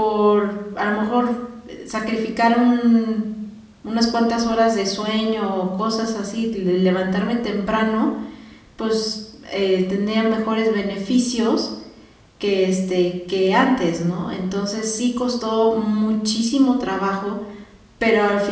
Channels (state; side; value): identical; both; correlation 1.00